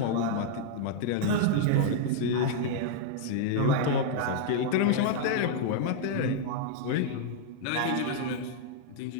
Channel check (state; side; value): different; both; correlation -0.01